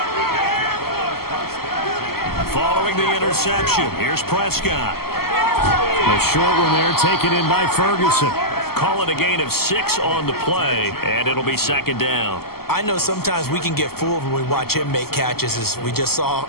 Following the interception, here's Prescott. A short one there taken in by Ferguson. Call it a gain of 6 on the play, and it'll be 2nd down. I know sometimes we can get fooled when we watch him make catches, as we just saw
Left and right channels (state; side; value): late; right; 0.95 ms